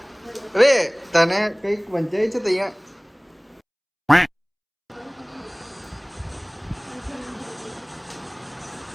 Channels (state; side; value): identical; both; correlation 1.00